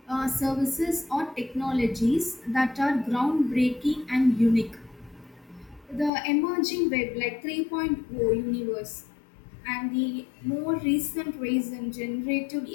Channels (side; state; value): right; drops out; at 6.1 s